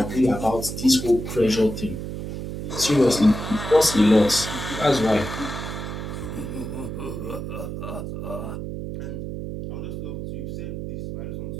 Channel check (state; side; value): noise; right; hum, 6 dB below the sound